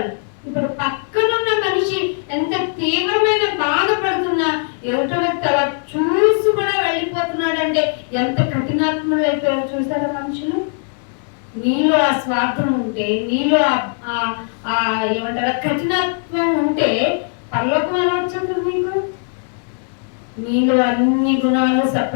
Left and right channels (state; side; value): silent; right; 55 dB below the other